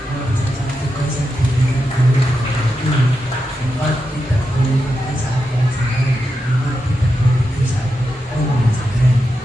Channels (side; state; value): both; normal; correlation 0.88